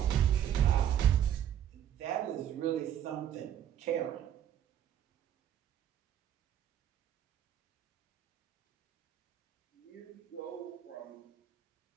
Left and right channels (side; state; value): left; quieter; 10.2 dB